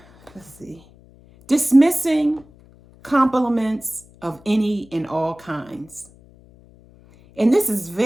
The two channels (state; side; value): noise; left; hum, 26 dB below the sound